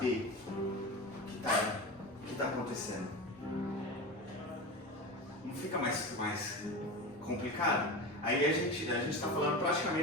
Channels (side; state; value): both; normal; correlation 0.26